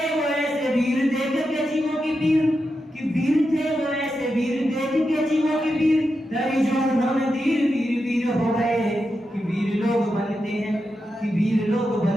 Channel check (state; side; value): normal; both; correlation 0.88